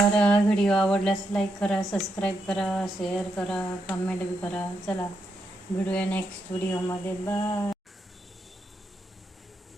व्हिडिओ आवडल्यास लाईक करा, सबस्क्राईब करा, शेअर करा, कमेंट बी करा. चला भेटूया नेक्स्ट व्हिडिओमध्ये. बाय.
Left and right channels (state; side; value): normal; both; correlation 0.81